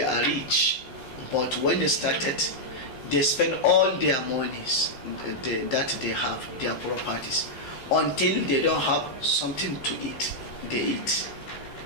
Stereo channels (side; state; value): right; late; 15 ms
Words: are rich, but when they started, they spend all their monies that they have, their properties, until they don't have something to eat. They eat.